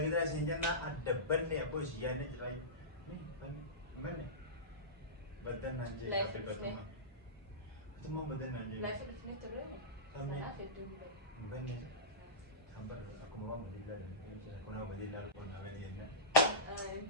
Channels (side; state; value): both; normal; correlation -0.17